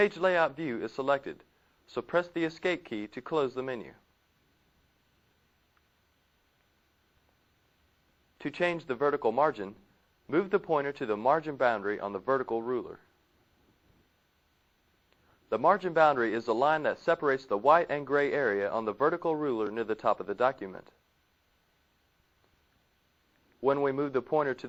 Layout view is selected, so press the Escape key to close the menu. To change the vertical margin, move the pointer to the margin boundary on the vertical ruler. The margin boundary is the line that separates the white and gray area on the vertical ruler near the top of the document. When we move the pointer to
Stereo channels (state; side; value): identical; both; correlation 1.00